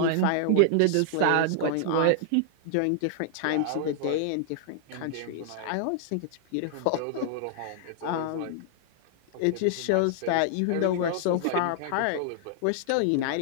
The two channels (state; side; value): different; both; correlation -0.01